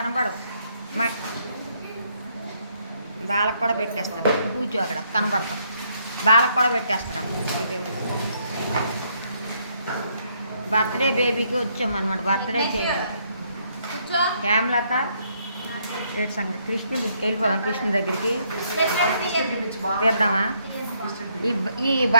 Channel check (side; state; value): both; inverted; correlation -0.71